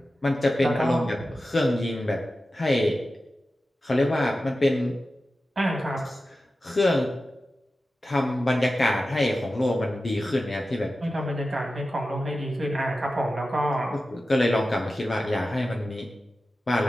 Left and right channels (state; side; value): normal; both; correlation 0.93